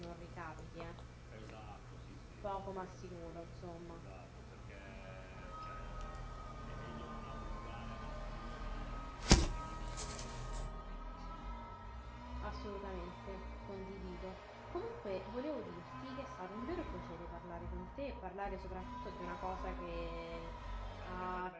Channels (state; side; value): identical; both; correlation 1.00